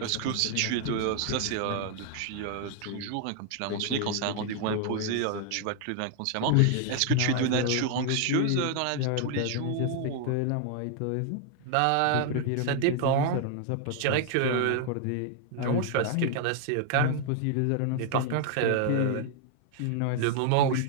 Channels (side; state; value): both; different; correlation 0.00